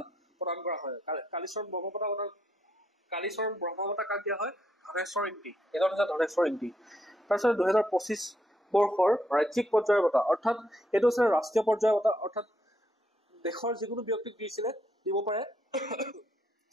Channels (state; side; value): normal; both; correlation 0.75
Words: প্ৰদান কৰা হয়। কালীচৰণ ব্ৰহ্ম বঁটা কাক দিয়া হয়, ধনেশ্বৰ ইংগি। এজন হৈছে ধনেশ্বৰ ইংগি। তাৰপিছত 2025 বৰ্ষৰ ৰাজ্যিক পৰ্যায়ৰ বঁটা, অৰ্থাৎ এইটো হৈছে ৰাষ্ট্ৰীয় পৰ্যায়ৰ বঁটা। অৰ্থাৎ দেশৰ যিকোনো ব্যক্তিক দিব পাৰে।